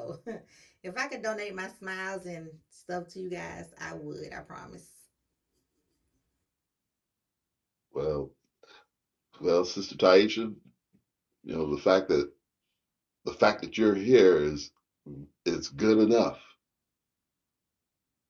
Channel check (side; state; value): both; identical; correlation 1.00